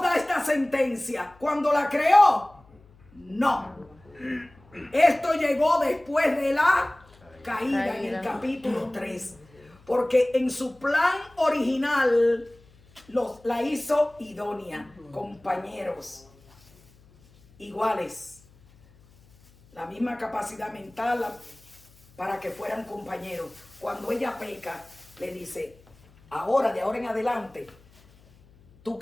da esta sentencia? ¿Cuando la creó? No. Esto llegó después de la caída en el capítulo 3. Porque en su plan original la hizo idónea, compañeros iguales, la misma capacidad mental para que fueran compañeros. Cuando ella peca, le dice, de ahora en adelante, tu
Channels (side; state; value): left; noise; hum, 28 dB below the sound